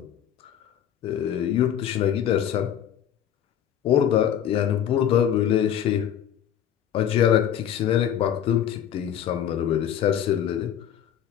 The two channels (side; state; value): right; quieter; 9.9 dB